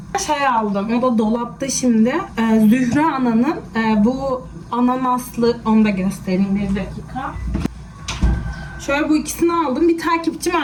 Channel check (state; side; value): identical; both; correlation 1.00